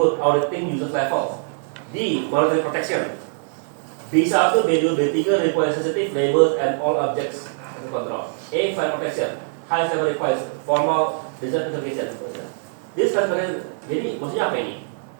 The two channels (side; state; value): left; silent; digital silence